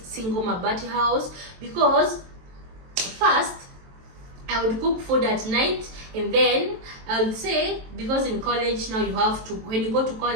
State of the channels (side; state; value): left; late; 23 ms